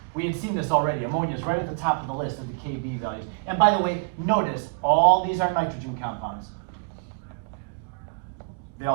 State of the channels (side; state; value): left; quieter; 30.8 dB